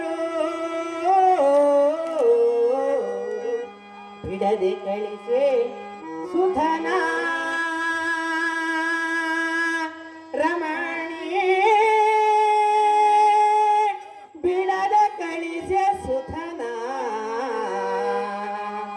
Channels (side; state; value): both; identical; correlation 1.00